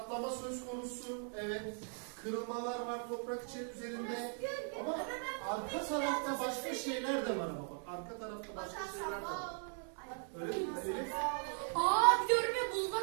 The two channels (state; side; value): silent; left; 52 dB below the other